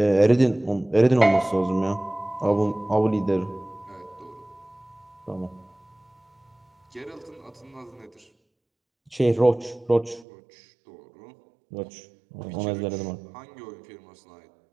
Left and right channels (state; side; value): drops out; left; at 10.2 s